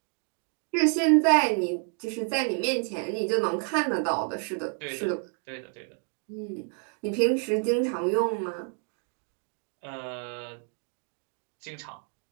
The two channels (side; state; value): left; quieter; 40.0 dB